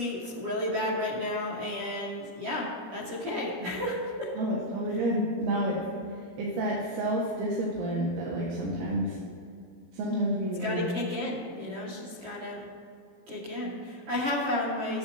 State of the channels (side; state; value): left; late; 17 ms